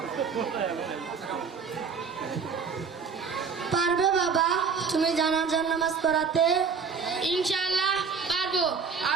পারবে বাবা তুমি জানাজার নামাজ পড়াতে? ইনশাআল্লাহ পারবো।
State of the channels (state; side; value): quieter; left; 5.6 dB